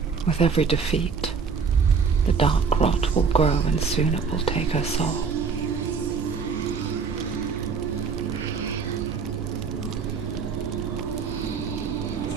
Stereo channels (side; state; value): left; quieter; 5.5 dB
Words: With every defeat, the dark rot will grow and soon it will take her soul.